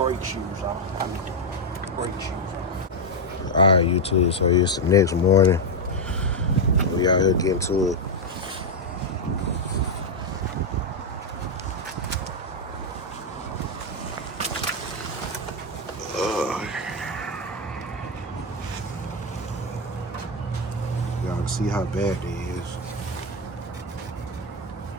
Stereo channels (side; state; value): both; normal; correlation 0.04